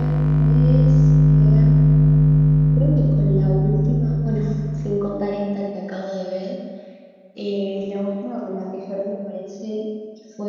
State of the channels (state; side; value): identical; both; correlation 1.00